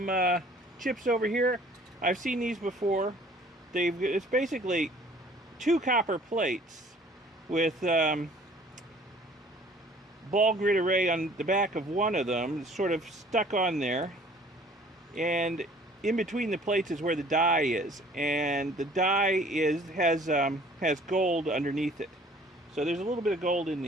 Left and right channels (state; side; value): normal; both; correlation 0.53